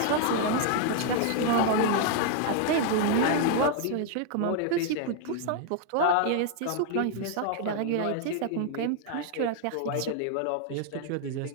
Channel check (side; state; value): both; different; correlation 0.00